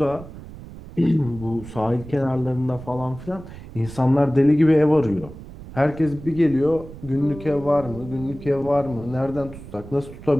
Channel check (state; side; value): noise; right; rumble, 15 dB below the sound